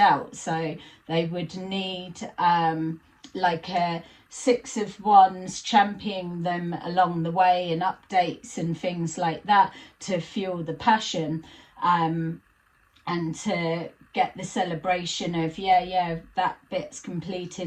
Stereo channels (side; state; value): both; identical; correlation 1.00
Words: so they would need like a Six of Wands championing them along the way, and updates and things like that to fuel the passion, and to get the celebration of, yeah, that bit's